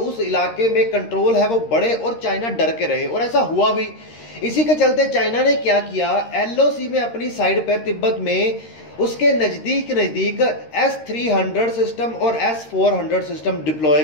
इलाके में कंट्रोल है वो बढ़े और चाइना डर के रहे। और ऐसा हुआ भी। इसी के चलते चाइना ने क्या किया, एलओसी में अपनी साइड पर तिब्बत में उसके नजदीक S-300 सिस्टम और S-400 सिस्टम डिप्लॉय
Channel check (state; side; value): late; right; 13 ms